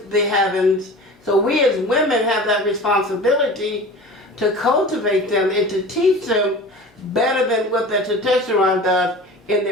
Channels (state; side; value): normal; both; correlation 0.37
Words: the heavens. So we as women have that responsibility to cultivate them and to teach them better than what the testosterone does in